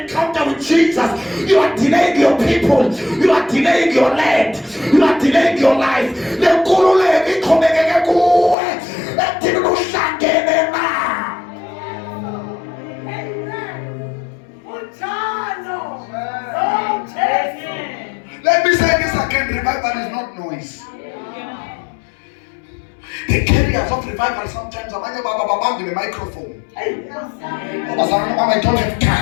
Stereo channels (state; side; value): drops out; right; at 8.6 s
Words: encounter with Jesus, you are delaying your people, you are delaying your land, you are delaying your life. Le nkululeko iqhubekeke kuwe. Ethini uhlangene na. Let me say this again, revival is not noise. The carriers of revival sometimes abanye baba babambe the microphone. I don't have